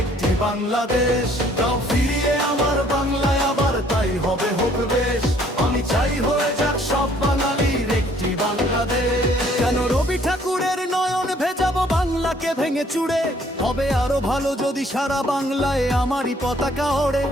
একটি বাংলাদেশ। দাও ফিরিয়ে আমার বাংলায় আবার, তাই হবে হোক বেশ। আমি চাই হয়ে যাক সব বাঙালির একটি বাংলাদেশ। কেন রবি ঠাকুরের নয়ন ভেজাবো বাংলাকে ভেঙে চুড়ে? হবে আরো ভালো যদি সারা বাংলায় আমারই পতাকা ওড়ে।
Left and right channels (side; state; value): both; normal; correlation 0.61